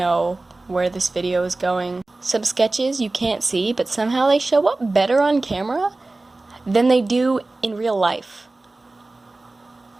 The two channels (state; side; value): quieter; left; 3.1 dB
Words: where this video is going. Some sketches you can't see, but somehow they show up better on camera than they do in real life.